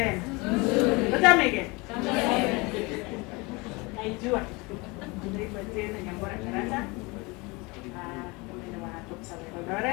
Utamege. Naijua. Naitwa tena Nyambura Karata. Mimi wa Topserve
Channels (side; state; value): right; quieter; 26.0 dB